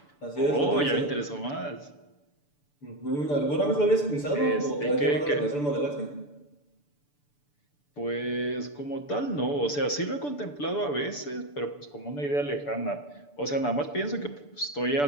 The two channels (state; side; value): late; right; 6.9 ms